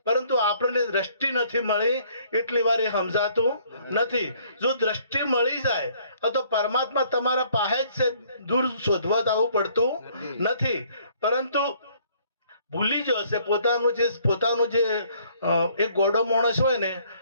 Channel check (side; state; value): both; inverted; correlation -0.62